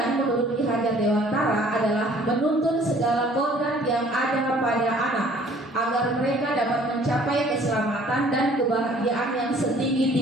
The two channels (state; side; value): normal; both; correlation 0.55